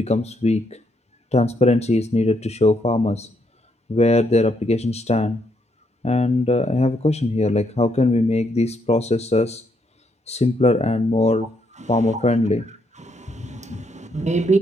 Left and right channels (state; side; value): normal; both; correlation 0.75